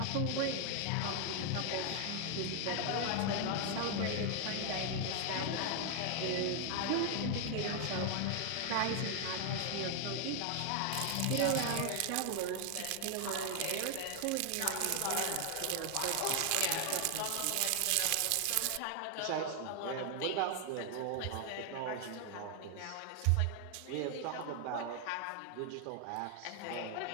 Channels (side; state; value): both; different; correlation 0.00